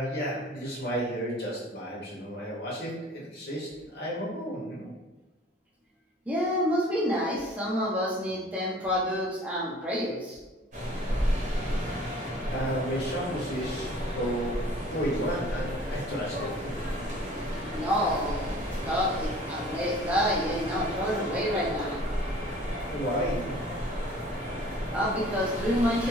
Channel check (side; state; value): both; normal; correlation 0.49